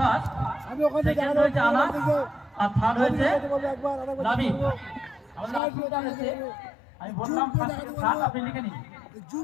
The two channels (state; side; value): drops out; right; at 5.6 s